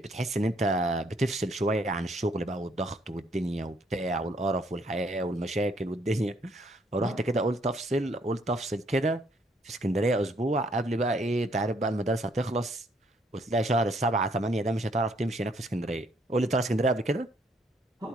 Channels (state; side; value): normal; both; correlation 0.68